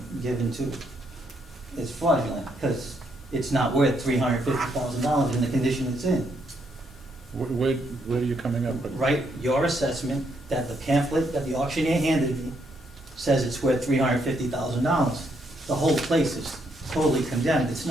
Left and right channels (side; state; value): both; normal; correlation 0.75